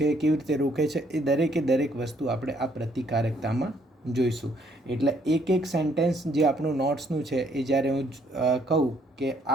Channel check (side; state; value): both; normal; correlation 0.68